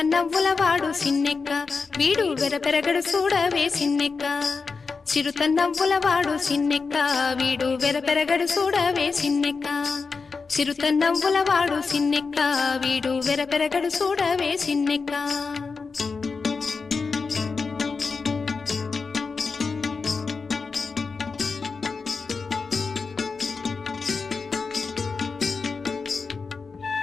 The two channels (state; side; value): quieter; right; 4.7 dB